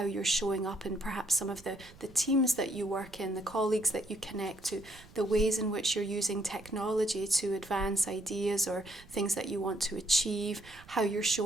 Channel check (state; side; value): noise; right; rumble, 22 dB below the sound